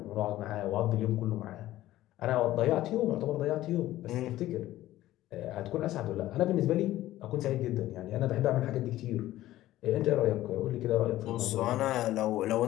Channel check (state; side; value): quieter; right; 15.0 dB